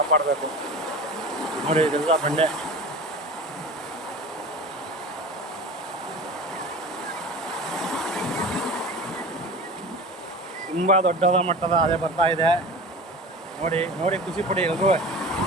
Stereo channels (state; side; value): normal; both; correlation 0.34